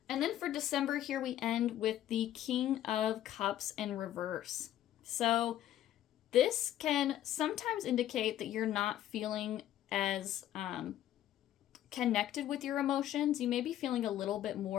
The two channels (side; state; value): right; quieter; 12.3 dB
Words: And then for December here, we end with the King of Cups in reverse. So this can sometimes indicate that you're not feeling as connected with your emotions. You may be feeling a little bit